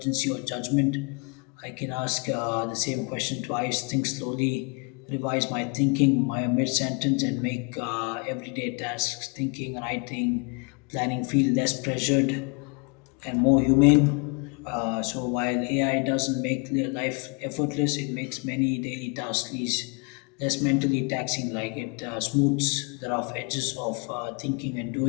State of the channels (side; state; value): right; quieter; 33.8 dB